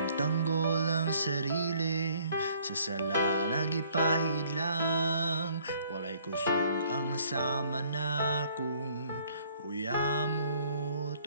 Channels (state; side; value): inverted; both; correlation -0.61